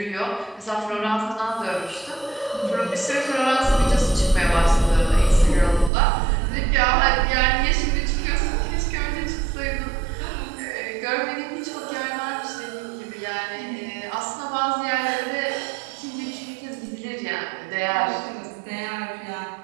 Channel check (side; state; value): left; drops out; at 5.9 s